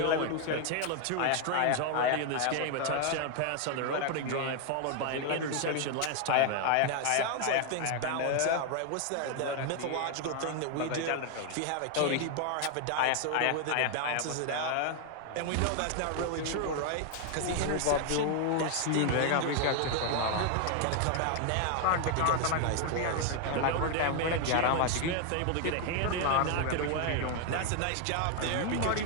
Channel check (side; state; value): both; different; correlation 0.00